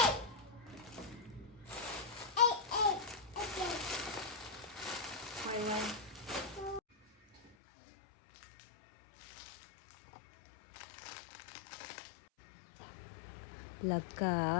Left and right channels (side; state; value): right; drops out; at 7.5 s